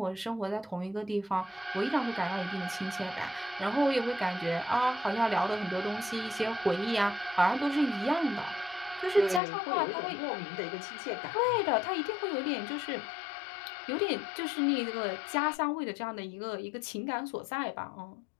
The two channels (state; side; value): drops out; right; at 9.4 s